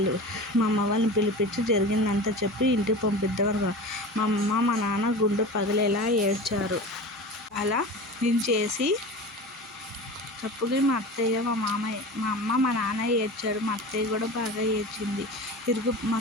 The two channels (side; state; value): both; normal; correlation 0.32